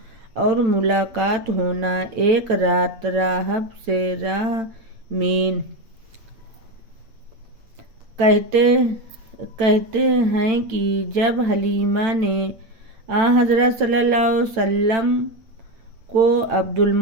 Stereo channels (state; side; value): late; left; 8.9 ms